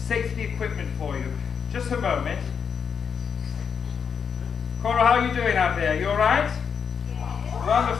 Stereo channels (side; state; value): right; quieter; 6.8 dB